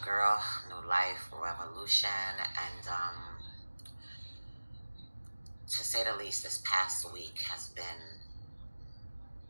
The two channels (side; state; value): both; inverted; correlation -1.00